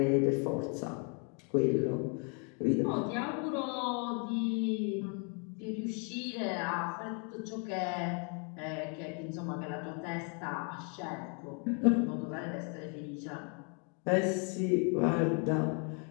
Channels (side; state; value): right; quieter; 38.6 dB